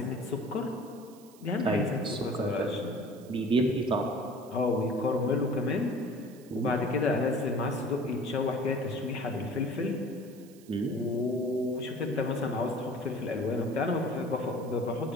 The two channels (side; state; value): right; noise; hiss, 24 dB below the sound